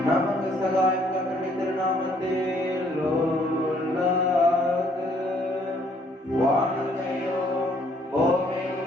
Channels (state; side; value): normal; both; correlation 0.65